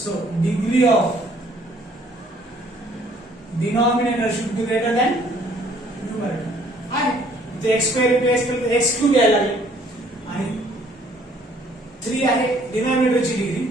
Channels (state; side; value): normal; both; correlation 0.60